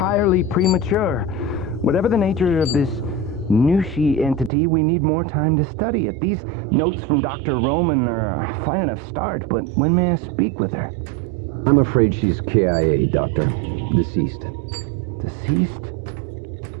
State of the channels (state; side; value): drops out; left; at 4.5 s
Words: premature. Whatever the nature of this Nushi entity, we need more time to study it. These notes from Dr. Roman are a fine enough start, but when may I speak with her? I'm afraid she's KIA, Doctor. Deceased. Deceased?